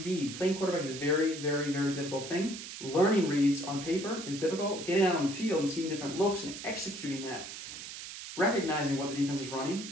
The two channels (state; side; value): noise; right; hiss, 10 dB below the sound